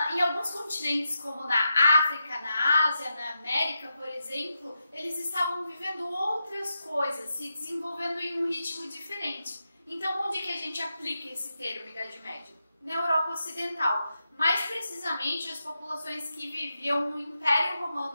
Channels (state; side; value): inverted; both; correlation -0.87